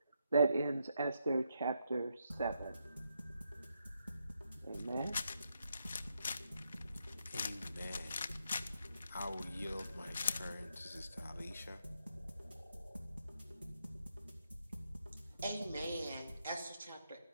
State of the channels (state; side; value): inverted; both; correlation -0.81